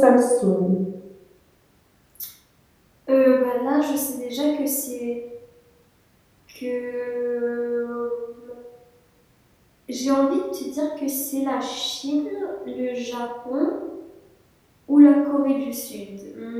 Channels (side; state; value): both; identical; correlation 1.00